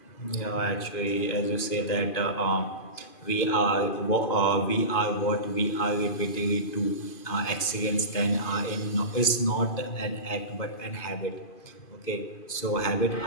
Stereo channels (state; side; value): late; right; 2.5 ms